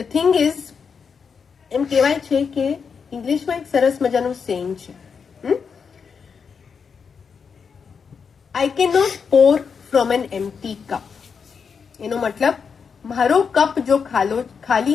થિંગ ઇઝ, એમ કહેવાય છે કે ઇંગ્લિશમાં એક સરસ મજાનું સેઇંગ છે, I can not Por from N empty cup. એનો મતલબ, મારો કપ જો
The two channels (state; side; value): quieter; right; 6.0 dB